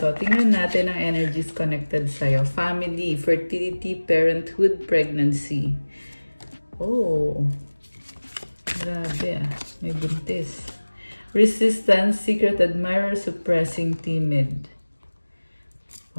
Tingnan natin ang energies connected sa'yo. Family, fertility, parenthood, pregnancy. Oh, grabe ah. May buntis. Resistance, secret admirer, suppressing, timid.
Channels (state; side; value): inverted; both; correlation -1.00